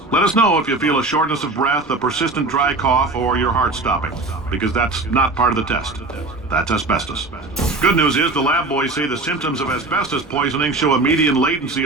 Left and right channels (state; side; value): quieter; left; 3.2 dB